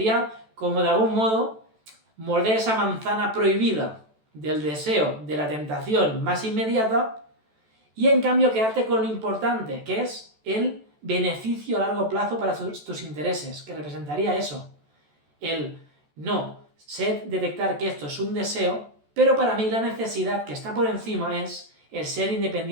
como de algún modo morder esa manzana prohibida del deseo, de la tentación más inmediata, y en cambio quedarte con lo importante, que es el beneficio a largo plazo para tus intereses, que representaría eso, el no, sé detectar que esto es un deseo, pero para mí la necesidad que está por encima es el ser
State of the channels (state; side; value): late; left; 14 ms